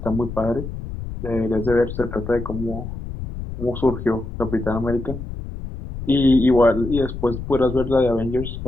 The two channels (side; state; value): left; noise; rumble, 8 dB below the sound